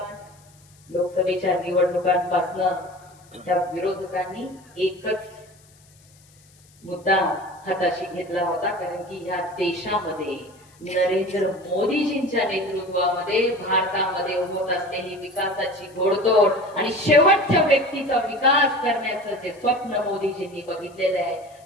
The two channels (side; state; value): left; noise; hiss, 29 dB below the sound